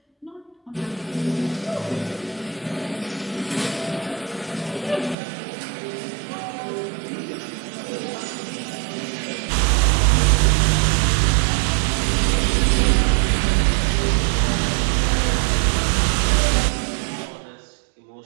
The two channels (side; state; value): left; drops out; at 5.2 s